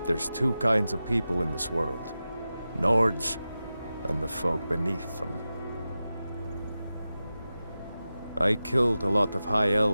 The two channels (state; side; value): inverted; both; correlation -0.93